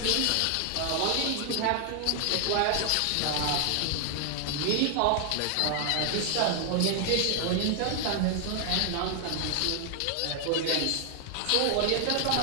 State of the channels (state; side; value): different; both; correlation 0.00